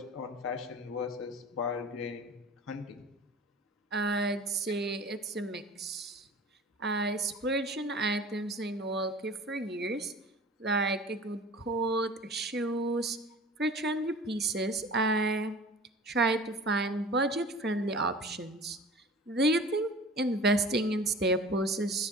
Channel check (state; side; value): normal; both; correlation 0.41